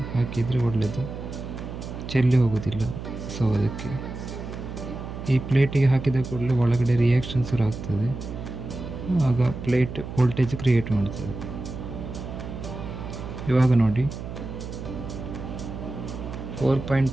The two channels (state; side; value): noise; right; hum, 9 dB below the sound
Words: ಹಾಕಿದರೆ ಒಳ್ಳೆಯದು, ಚೆಲ್ಲಿ ಹೋಗೋದಿಲ್ಲ. ಸೊ ಅದಕ್ಕೆ ಈ ಪ್ಲೇಟಿಗೆ ಹಾಕಿದ ಕೂಡಲೇ ಒಳಗಡೆ ರಿಯಾಕ್ಷನ್ ಶುರು ಆಗ್ತದೆ. ಆಗ ಪ್ಲೇಟ್ ವೋಲ್ಟೇಜ್ ಕ್ರಿಯೇಟ್ ಮಾಡ್ತದೆ. ಇವಾಗ ನೋಡಿ